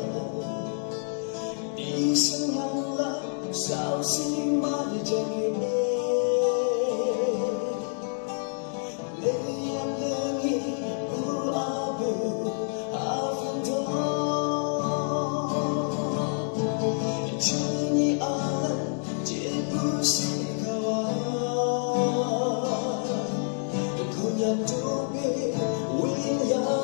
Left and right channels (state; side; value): silent; right; 60 dB below the other